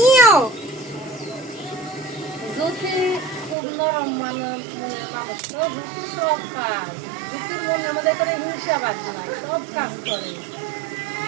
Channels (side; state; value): left; drops out; at 3.6 s